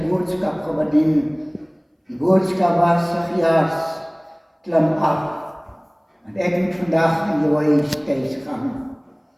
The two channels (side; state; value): both; identical; correlation 1.00